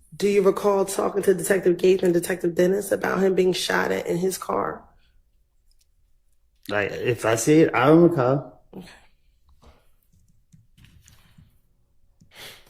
Do you recall talking to Detective Gates and Detective Dennis about him being shot at in his car? Like, if I see it, I don't recall. Okay.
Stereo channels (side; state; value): both; identical; correlation 1.00